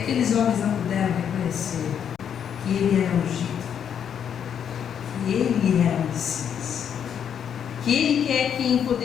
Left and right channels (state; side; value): quieter; right; 8.4 dB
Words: homens não puderam reconhecer que ele era ungido, que ele era o Messias, que ele é quem